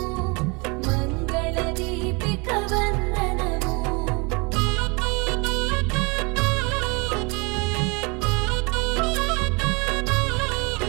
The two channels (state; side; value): quieter; left; 29.4 dB